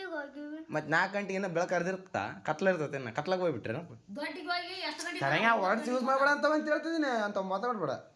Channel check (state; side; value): identical; both; correlation 1.00